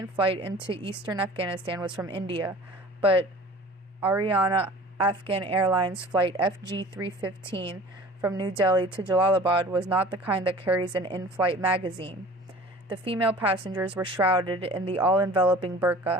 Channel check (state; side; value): normal; both; correlation 0.44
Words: flight into eastern Afghanistan was from India, but Ariana Afghan Airlines flight FG315 from New Delhi to Jalalabad was not the kind that carries an in-flight magazine. The female passengers were shrouded in the all-enveloping